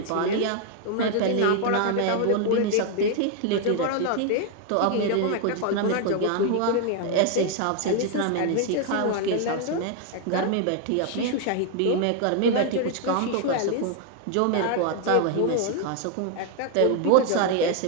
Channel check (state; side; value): different; both; correlation 0.00